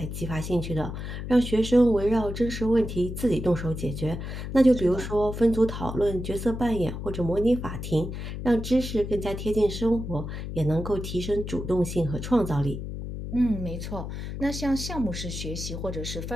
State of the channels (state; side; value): noise; left; hum, 7 dB below the sound